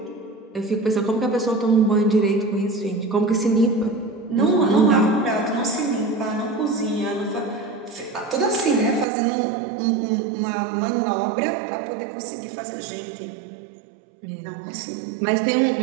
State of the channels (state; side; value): drops out; left; at 9.1 s